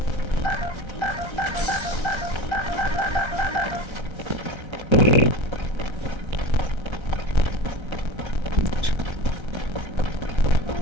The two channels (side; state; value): left; late; 1.3 ms